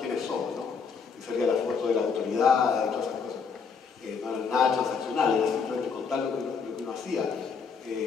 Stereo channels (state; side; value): quieter; right; 5.8 dB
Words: somos, ¿no? Y salía la foto de la autoridad y todas esas cosas. No era nada transaccional, era simplemente contar lo que uno hacía.